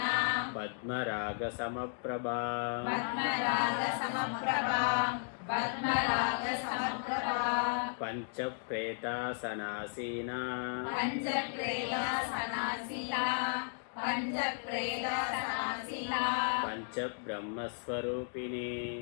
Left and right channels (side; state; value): right; silent; digital silence